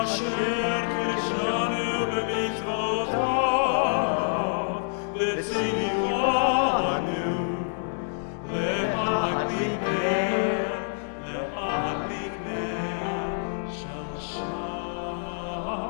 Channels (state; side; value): silent; right; digital silence